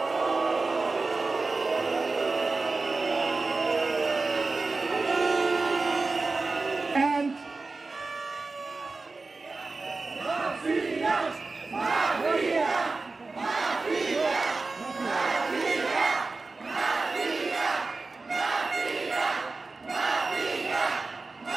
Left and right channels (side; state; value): left; quieter; 3.7 dB